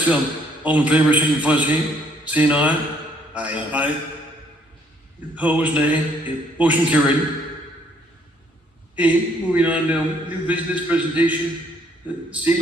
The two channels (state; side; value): normal; both; correlation 0.66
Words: all in favor, signify by saying aye. Aye. Aye. Opposed, nay. Okay, motion carried. Okay, moving on to new business presentation,